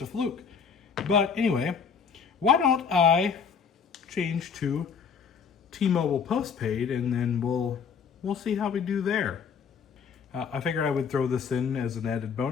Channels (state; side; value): quieter; right; 6.3 dB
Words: a fluke. But anyway, why don't I change to T-Mobile postpaid, and then we'll see how we do there. I figured I would throw this in as an added